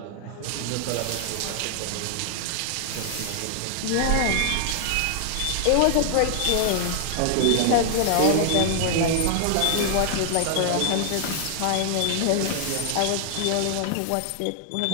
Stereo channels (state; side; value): different; both; correlation 0.00